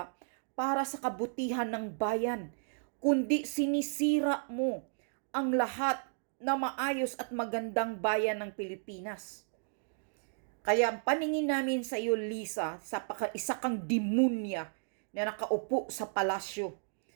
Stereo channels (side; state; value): left; silent; digital silence